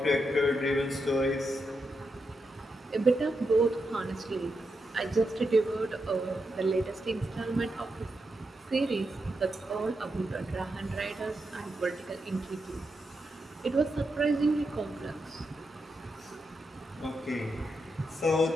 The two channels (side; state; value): both; normal; correlation 0.85